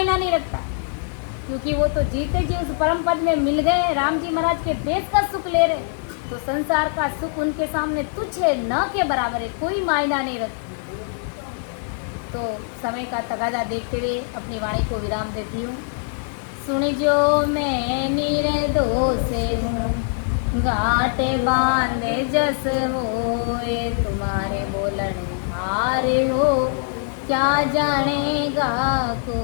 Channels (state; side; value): silent; right; digital silence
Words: नहीं रखता, क्योंकि वो तो जीते जी उस परम पद में मिल गए, राम जी महाराज के देश का सुख ले रहे। तो संसार का सुख उनके सामने तुच्छ है, न के बराबर है, कोई मायना नहीं रखता। तो समय का तगादा देखते हुए अपनी वाणी को विराम देती हूँ। सुन जो मैं निर्दोष हूँ, गाटे बांधे जस होए, तुम्हारे बोलन हारे हो, क्या जानेगा